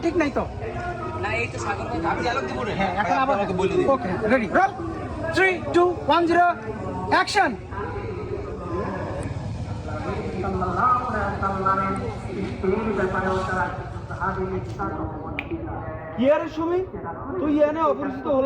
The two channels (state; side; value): identical; both; correlation 1.00